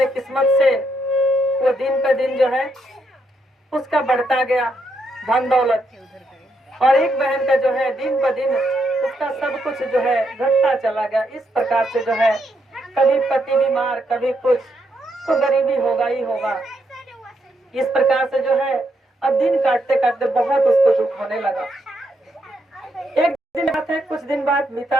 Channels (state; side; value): normal; both; correlation 0.78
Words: किस्मत से वो दिन पे दिन जो है उसका बढ़ता गया धन दौलत, और एक बहन का जो है दिन ब दिन उसका सब कुछ जो है घटता चला गया। इस प्रकार से जो है कभी पति बीमार, कभी कुछ, तो गरीबी होगा ही होगा। इस प्रकार से जो है अब दिन काटते काटते बहुत उसको दुख होने लगा। एक दिन बात है, कुछ दिन बाद